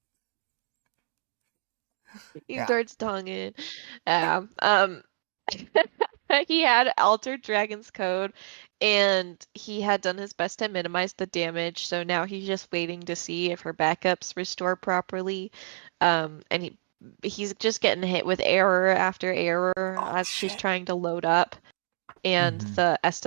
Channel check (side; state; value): left; silent; digital silence